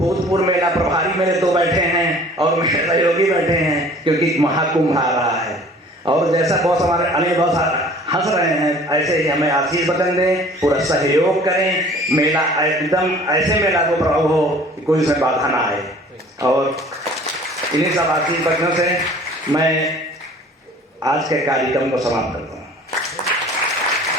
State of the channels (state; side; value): normal; both; correlation 0.49